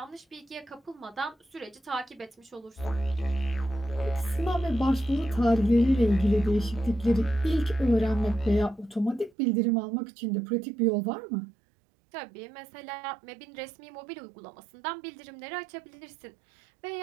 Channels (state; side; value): drops out; left; at 9.3 s